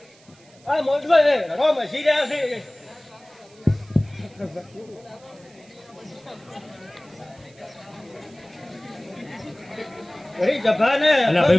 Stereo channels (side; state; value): right; noise; hiss, 28 dB below the sound